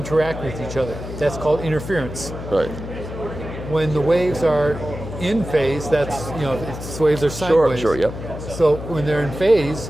with each other. That's called interference. Right. When the waves are in phase, that's, waves are sine waves. Sure, yep. So when they're in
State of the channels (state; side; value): noise; left; hum, 9 dB below the sound